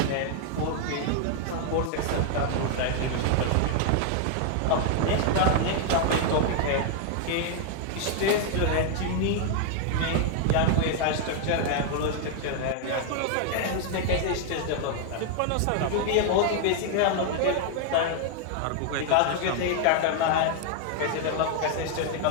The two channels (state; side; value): different; both; correlation 0.00